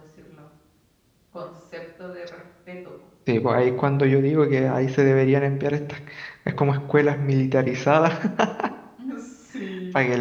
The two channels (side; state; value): both; identical; correlation 1.00